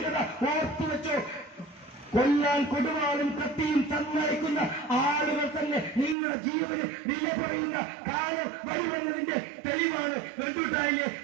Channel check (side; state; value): left; drops out; at 6.2 s